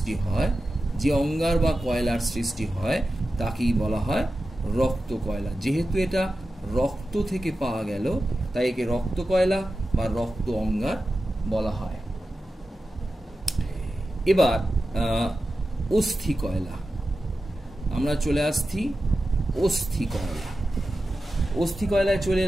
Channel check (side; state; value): both; normal; correlation 0.93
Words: হয়, যে অঙ্গার বা কয়লার সৃষ্টি হয় তাকেই বলা হয় রক্ত কয়লা। যেহেতু এটা রক্ত থেকে পাওয়া গেল তাই একে রক্ত কয়লা বা রক্ত অঙ্গার বলা হয়। এবার অস্থি কয়লা, আমরা চলে আসছি অস্থি কয়লা। অস্থি কয়লায় চলে